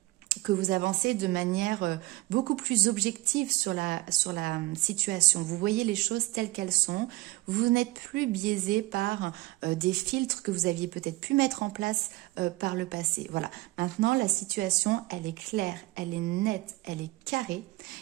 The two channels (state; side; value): quieter; left; 20.2 dB